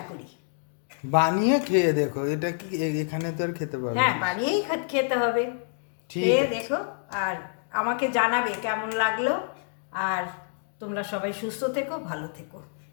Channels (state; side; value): silent; right; digital silence